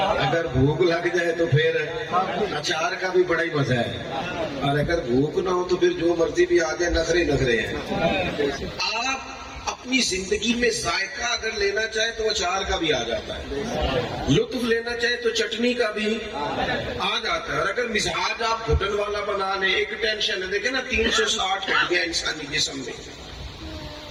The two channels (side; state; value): both; identical; correlation 1.00